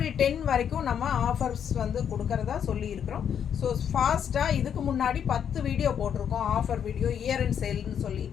10 வரைக்கும் நம்ம ஆஃபர்ஸ் வந்து கொடுக்கறதா சொல்லியிருக்கிறோம். ஸோ ஃபாஸ்ட்டாக இதுக்கு முன்னாடி 10 வீடியோ போட்டிருக்கோம், ஆஃபர் வீடியோ, இயர் அண்ட் சேல்னு சொல்லி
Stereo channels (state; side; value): quieter; right; 8.4 dB